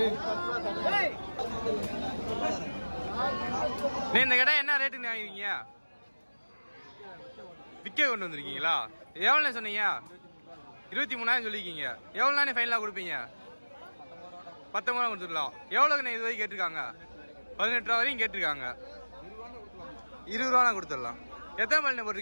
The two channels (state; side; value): inverted; both; correlation -1.00